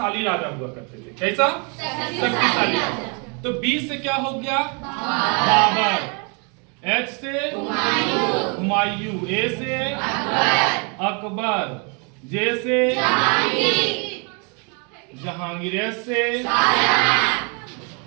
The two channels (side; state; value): left; quieter; 35.4 dB